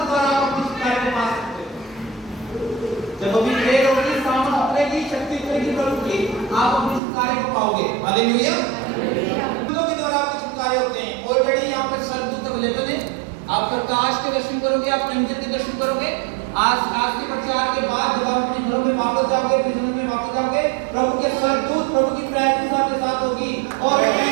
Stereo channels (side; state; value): left; drops out; at 7.0 s